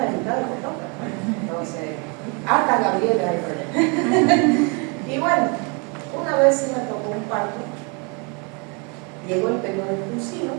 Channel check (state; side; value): quieter; left; 33.2 dB